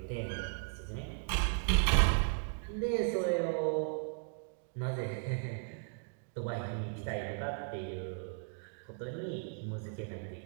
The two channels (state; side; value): silent; left; 54 dB below the other